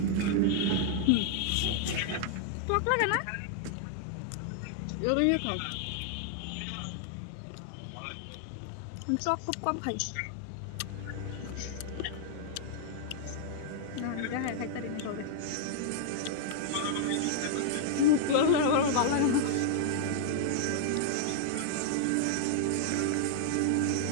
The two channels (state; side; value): different; both; correlation -0.01